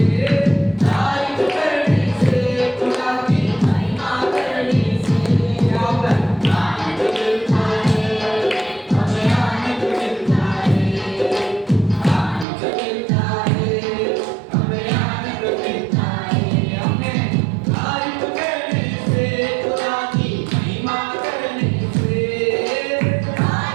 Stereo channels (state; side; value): drops out; left; at 12.5 s